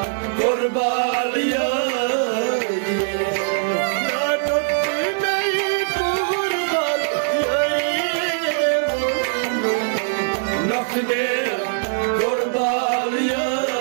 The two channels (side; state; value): left; silent; 65 dB below the other